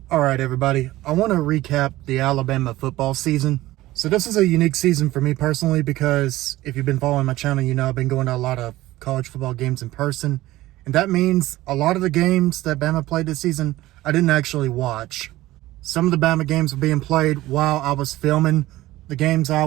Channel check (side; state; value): left; quieter; 16.9 dB